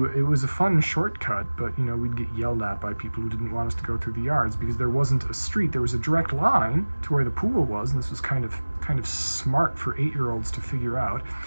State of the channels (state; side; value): inverted; both; correlation -1.00